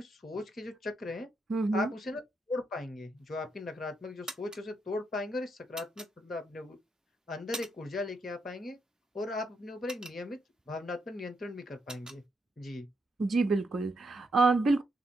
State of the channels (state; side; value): normal; both; correlation 0.80